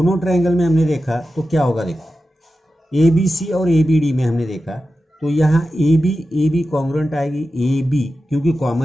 ट्रायंगल में हमने देखा तो क्या होगा, देखो ए बी सी और ए बी डी में हमने देखा तो यहाँ ए बी कॉन्ग्रुएंट आएगी, ए बी क्योंकि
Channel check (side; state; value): both; normal; correlation 0.92